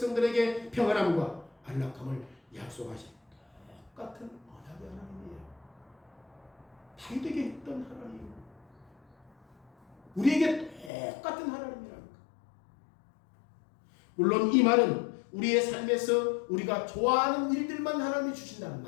평안함과 안락함을 약속하신 똑같은 언약의 하나님이에요. 다윗에게 했던 하나님, 우리에게 똑같은 하나님이랍니다. 물론 이 말은 우리의 삶에서 우리가 좋아하는 일들만 하나님이 주신다는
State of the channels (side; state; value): right; drops out; at 10.9 s